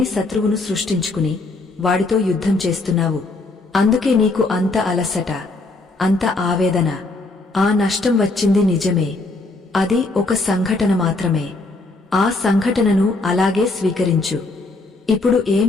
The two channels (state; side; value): quieter; right; 3.2 dB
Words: శత్రువును సృష్టించుకుని వాడితో యుద్ధం చేస్తున్నావు. అందుకే నీకు అంత అలసట, అంత ఆవేదన. ఆ నష్టం వచ్చింది నిజమే, అది ఒక సంఘటన మాత్రమే. ఆ సంఘటనను అలాగే స్వీకరించు. ఇప్పుడు